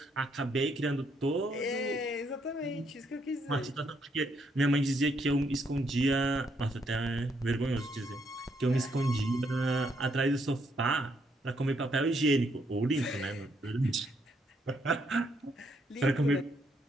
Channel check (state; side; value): normal; both; correlation 0.74